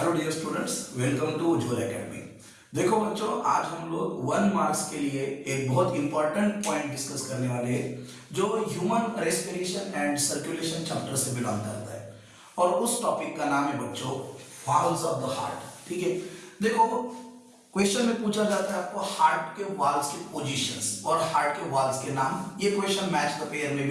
dear students, welcome to Ujjwal academy. देखो बच्चों, आज हम लोग 1 मार्क्स के लिए एक बहुत इंपॉर्टेंट पॉइंट डिस्कस करने वाले हैं जो human respiration and circulation chapter से बिलोंग करता है। और उस टॉपिक का नाम है बच्चों वाल्व्स ऑफ द हार्ट। ठीक है, देखो क्वेश्चन में पूछा जाता है आपको हार्ट के वाल्व्स के पोजीशंस और हार्ट के वाल्व्स के नाम। ये क्वेश्चन मैच द पेयर में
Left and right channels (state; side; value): identical; both; correlation 1.00